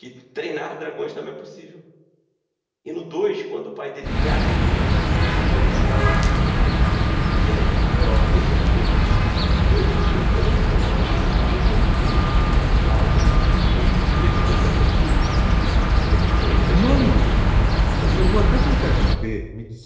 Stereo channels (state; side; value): identical; both; correlation 1.00